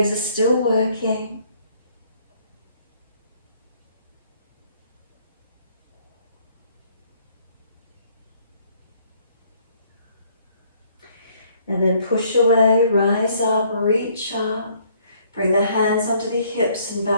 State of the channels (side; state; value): both; inverted; correlation -0.64